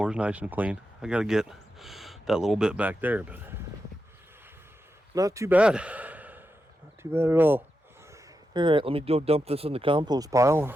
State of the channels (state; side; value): normal; both; correlation 0.88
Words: is nice and clean. I got to get that little bit back there, but not too bad. Not too bad at all. Alright, let me go dump this in the compost pile